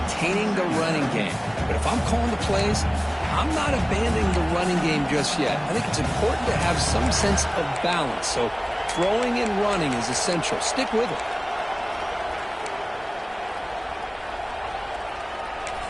the running game. But if I'm calling the plays, I'm not abandoning the running game just yet. I think it's important to have some sense of balance. So throwing and running is essential. Stick with it.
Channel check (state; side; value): identical; both; correlation 1.00